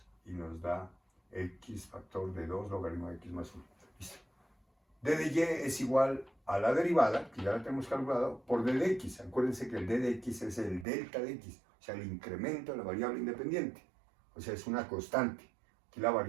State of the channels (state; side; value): drops out; left; at 10.9 s